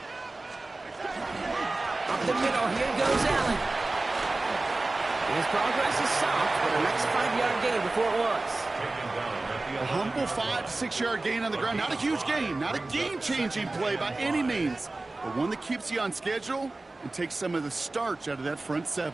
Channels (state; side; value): quieter; left; 3.1 dB